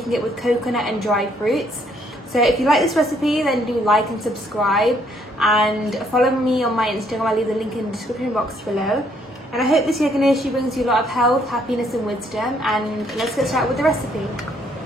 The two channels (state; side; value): normal; both; correlation 0.68